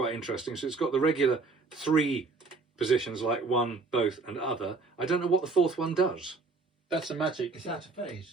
interesting. So it's got the regular 3 positions like one, both, and other. I don't know what the 4th one does. That's the magic. It's out of phase,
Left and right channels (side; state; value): left; quieter; 4.0 dB